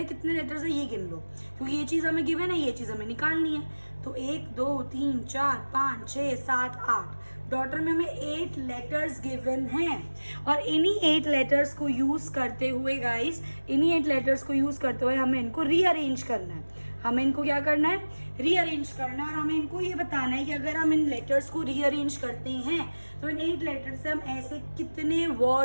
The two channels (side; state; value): both; inverted; correlation -1.00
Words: कितने लेटर्स है ये गिन लो, क्योंकि ये चीज़ हमें गिवन है, ये चीज़ हमें निकालनी है. तो 1 2 3 4 5 6 7 8 डॉटर में हमें 8 लेटर्स गिवन हैं और इन्हीं 8 लेटर्स को यूज़ करते हुए गाइस, इन्हीं 8 लेटर्स को यूज़ करते हुए हमें इनको रीअरेंज करना है. हमें इनको क्या करना है, रीअरेंज करना है. और हमें इनको ये बताना है कि अगर हम इन लेटर्स को रीअरेंज करते हैं तो इन 8 लेटर्स से हम ऐसे कितने